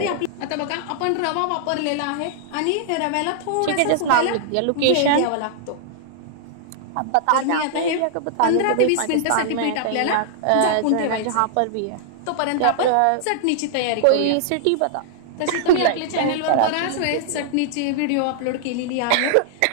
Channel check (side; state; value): both; different; correlation -0.01